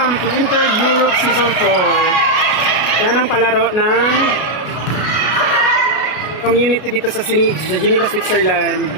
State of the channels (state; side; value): late; right; 33 ms